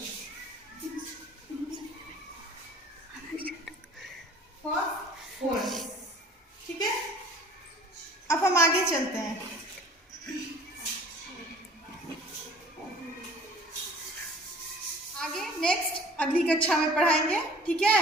फास्फोरस। ठीक है। अब हम आगे चलते हैं। आगे नेक्स्ट अगली कक्षा में पढ़ाएंगे। ठीक है।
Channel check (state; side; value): normal; both; correlation 0.50